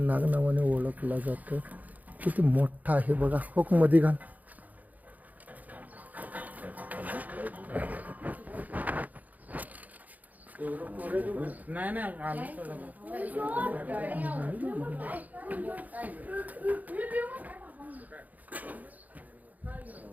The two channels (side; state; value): left; late; 0.079 ms